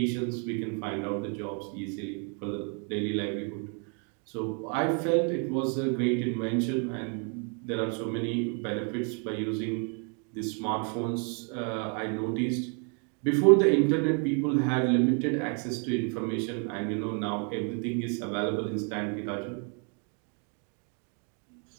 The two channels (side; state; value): left; quieter; 39.7 dB